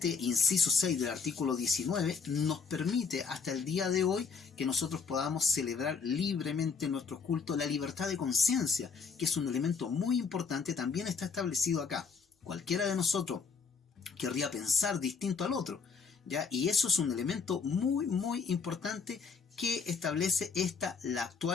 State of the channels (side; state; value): right; quieter; 5.7 dB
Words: inciso 6 del artículo 19 nos permite hasta el día de hoy que nosotros podamos celebrar libremente nuestros cultos. La libertad de conciencia, que es un elemento muy importante, también está establecido acá. Cualquiera de nosotros querría pensar distinto al otro, ¿ya? Y eso es un elemento muy muy importante que establece la